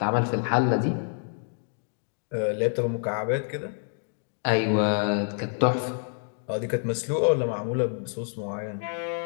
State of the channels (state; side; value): silent; right; 60 dB below the other